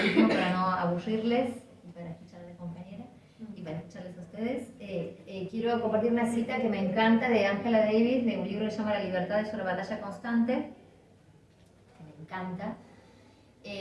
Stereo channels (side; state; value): both; identical; correlation 1.00